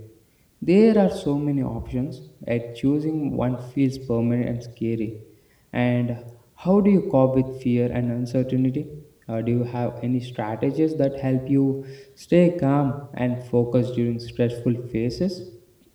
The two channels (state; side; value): identical; both; correlation 1.00